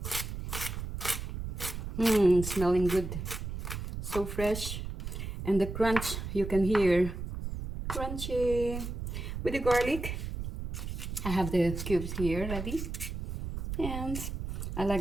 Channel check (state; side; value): noise; right; rumble, 6 dB below the sound